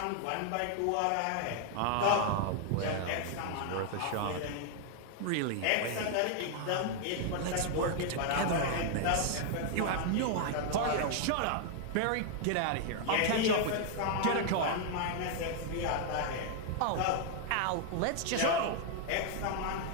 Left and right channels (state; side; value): different; both; correlation 0.00